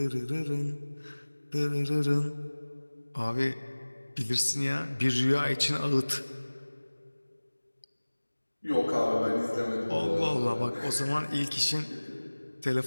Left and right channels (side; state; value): both; inverted; correlation -1.00